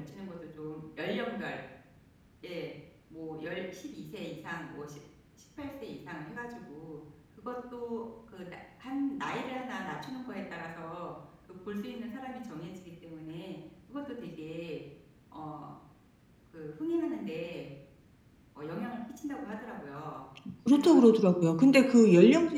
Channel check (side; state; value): both; identical; correlation 1.00